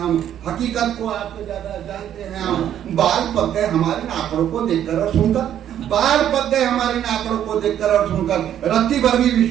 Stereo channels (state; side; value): quieter; left; 10.5 dB